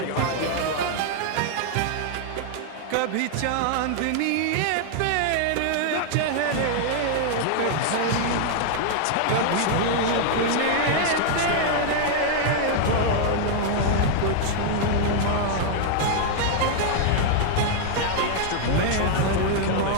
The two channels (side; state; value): both; different; correlation 0.00